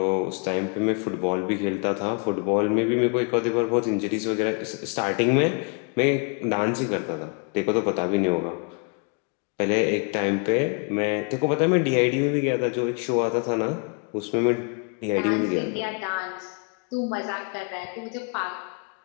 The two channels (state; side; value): quieter; right; 35.5 dB